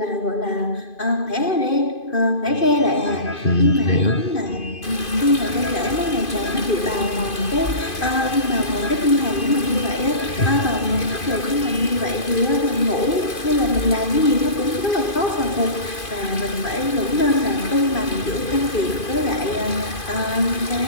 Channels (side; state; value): right; late; 2.5 ms